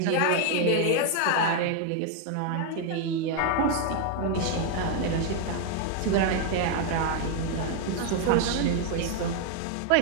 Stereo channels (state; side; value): different; both; correlation 0.01